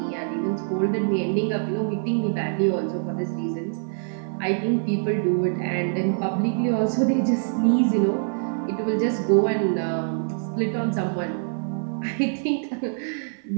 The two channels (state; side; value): silent; left; 62 dB below the other